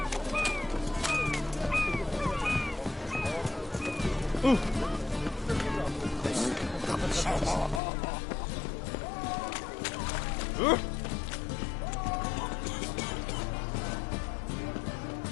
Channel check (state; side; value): drops out; right; at 7.8 s